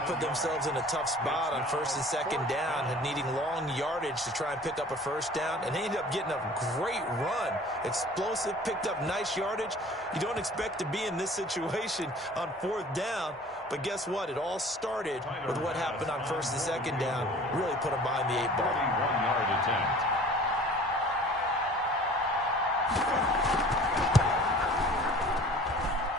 put themselves in a tough spot on 1st and 2nd down and needing long yardage to try and pick up a first down, and they ended up getting a great run. Explosive, picked up nice yardage. You don't expect to be in this situation on 4th down, but guess what? It all started with what happened on 1st and 2nd down. Really put them behind the 8 ball. 41-yard attempt.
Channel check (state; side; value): normal; both; correlation 0.47